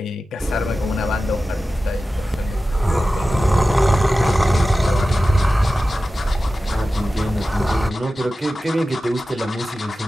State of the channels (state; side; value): normal; both; correlation 0.94